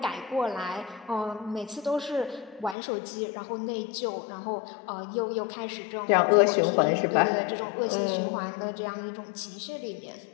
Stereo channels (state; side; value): drops out; right; at 2.8 s